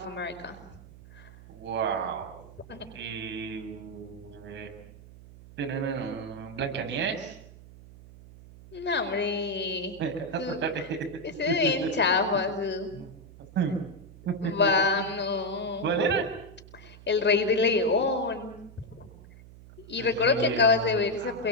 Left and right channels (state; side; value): noise; right; hum, 19 dB below the sound